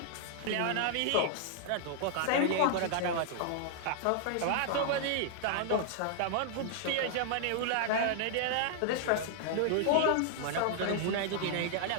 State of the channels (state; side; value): different; both; correlation -0.01